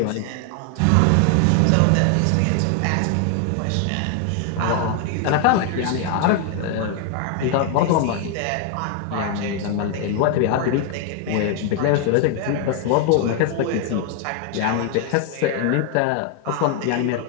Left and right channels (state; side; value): different; both; correlation 0.00